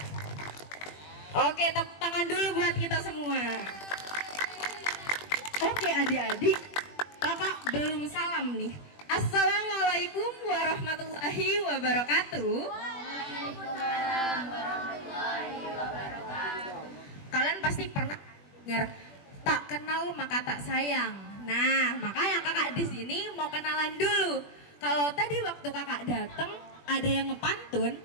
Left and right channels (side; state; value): right; late; 21 ms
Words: Oke, tepuk tangan dulu buat kita semua. Oke adik-adik, kakak belum salam nih. Assalamualaikum warahmatullahi wabarakatuh. Waalaikumsalam warahmatullahi wabarakatuh. Kalian pasti pernah dengar tak kenal maka tak sayang. Nah, makanya kakak di sini mau kenalan dulu. Kalau tadi waktu kakak datang ada yang ngepantun,